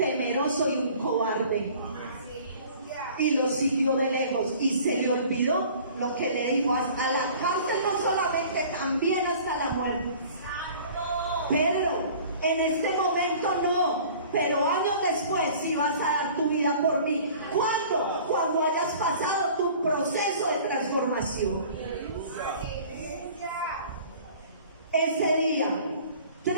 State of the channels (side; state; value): both; inverted; correlation -0.48